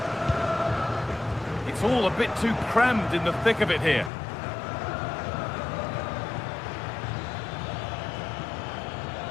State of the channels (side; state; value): right; drops out; at 4.1 s